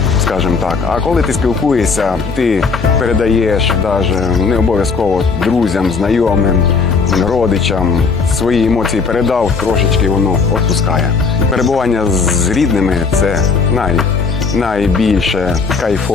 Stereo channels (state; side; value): quieter; right; 4.9 dB